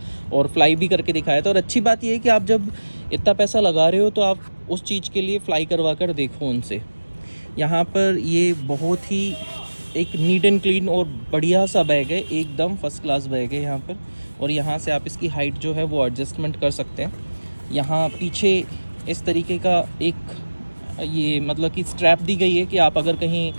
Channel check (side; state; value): both; inverted; correlation -1.00